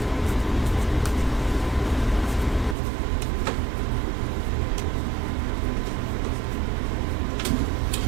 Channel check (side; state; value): left; drops out; at 2.8 s